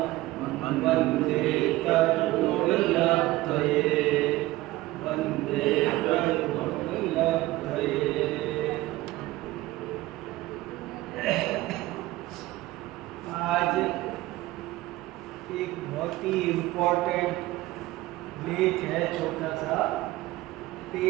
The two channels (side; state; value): left; quieter; 17.9 dB